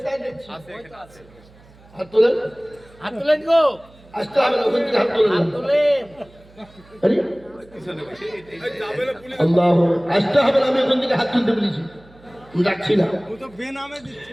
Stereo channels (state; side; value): noise; right; hum, 26 dB below the sound